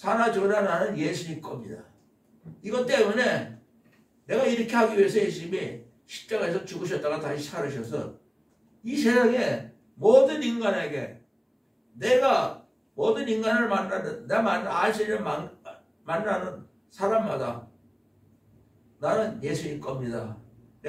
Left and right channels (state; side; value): identical; both; correlation 1.00